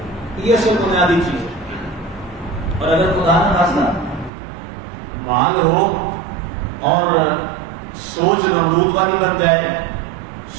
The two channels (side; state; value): left; drops out; at 4.3 s